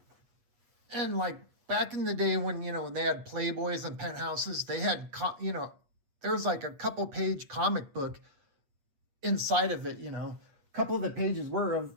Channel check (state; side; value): late; left; 8.4 ms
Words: And like back in the day when, when they had Playboys and Penthouses, they had, there was like a couple page comic book inside of it, A couple of the pages were of